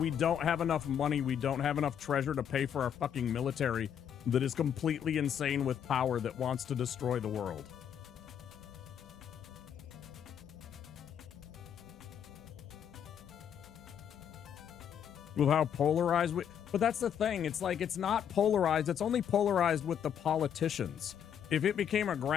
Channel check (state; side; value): quieter; right; 8.7 dB